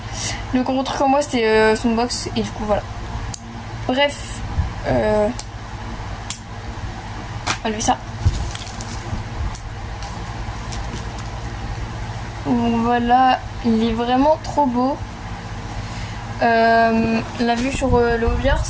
Le gros truc en moi c'était son box. Et du coup voilà. Bref. On va lever ça. Donc voilà, il est vraiment trop beau. La vue sur le hobby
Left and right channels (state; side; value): identical; both; correlation 1.00